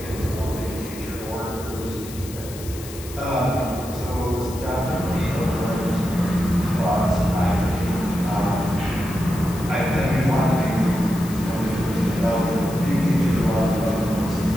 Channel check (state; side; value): noise; left; hiss, 15 dB below the sound